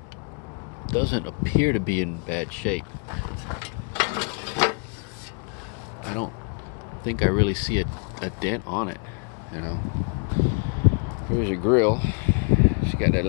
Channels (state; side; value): quieter; right; 37.4 dB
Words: doesn't appear to be in bad shape. I don't think I really see a dent on it, you know. Here's your grill. She got that